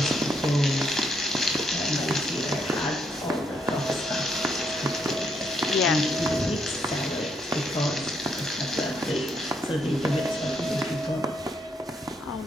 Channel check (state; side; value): normal; both; correlation 0.75